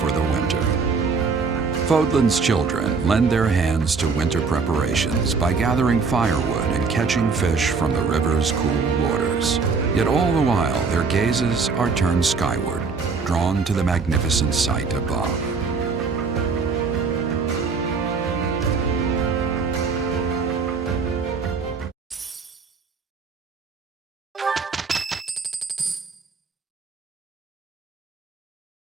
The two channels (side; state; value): left; quieter; 4.8 dB